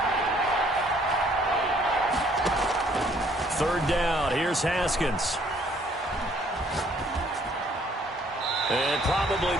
Third down. Here's Haskins. And probably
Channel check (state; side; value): normal; both; correlation 0.62